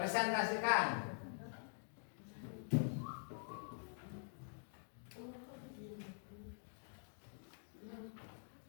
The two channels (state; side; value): silent; right; digital silence